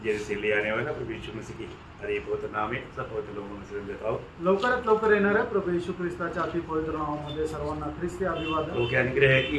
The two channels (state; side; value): identical; both; correlation 1.00